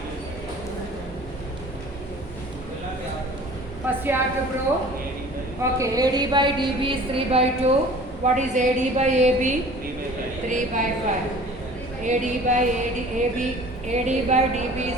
First you have to prove. Okay, AD by DB is 3 by 2. What is AD by AB? 3 by 5. AD by AD by DB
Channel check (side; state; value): both; normal; correlation 0.46